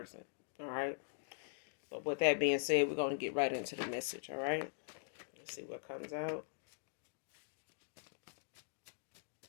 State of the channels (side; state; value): right; silent; digital silence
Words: All right? But with that being said, we're going to get right into the message, all right? Let's see what comes out.